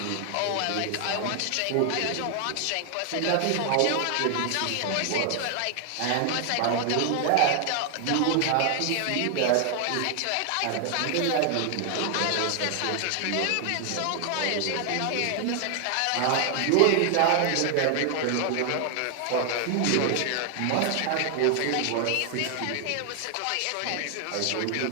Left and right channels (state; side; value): different; both; correlation 0.00